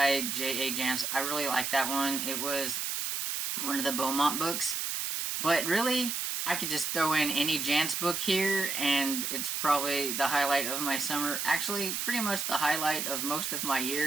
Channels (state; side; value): noise; right; hiss, 2 dB below the sound